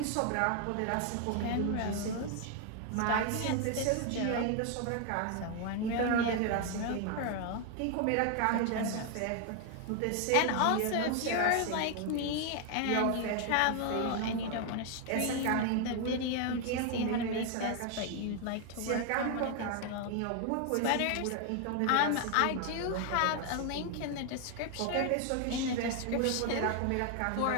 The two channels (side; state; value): both; different; correlation 0.00